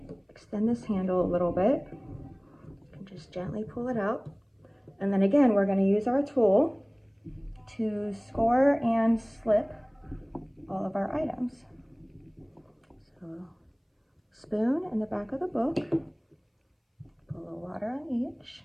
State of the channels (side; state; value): both; identical; correlation 1.00